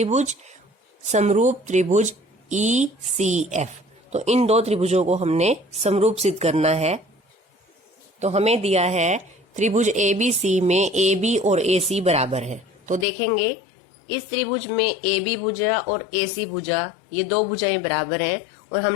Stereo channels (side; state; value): right; drops out; at 13.1 s